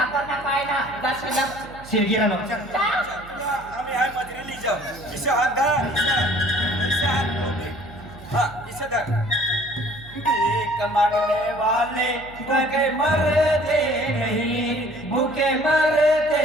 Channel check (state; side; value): noise; right; hum, 19 dB below the sound